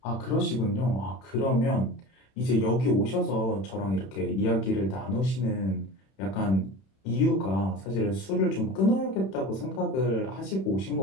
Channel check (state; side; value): late; right; 31 ms